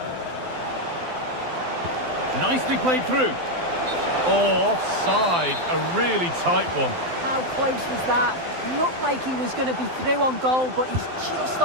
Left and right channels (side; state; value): left; late; 12 ms